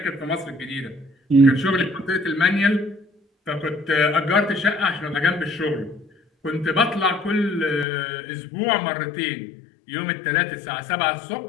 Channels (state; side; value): drops out; right; at 7.9 s